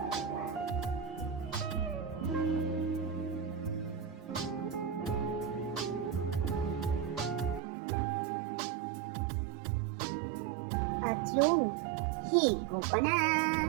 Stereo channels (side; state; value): left; drops out; at 7.6 s